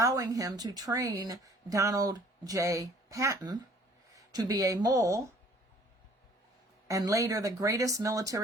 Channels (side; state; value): both; normal; correlation 0.55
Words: him to train Donald J. Patton to be a mole and later the greatest